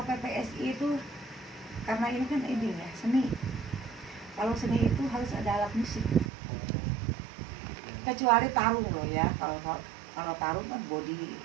PPSI itu karena ini kan ya seni. Kalau seni itu harus ada alat musik. Kecuali tarung loh ya. Kalau tarung kan body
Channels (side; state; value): left; drops out; at 6.3 s